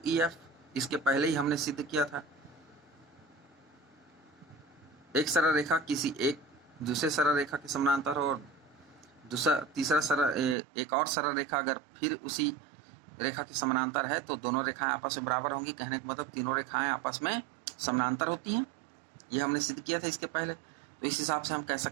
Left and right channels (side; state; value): left; drops out; at 10.6 s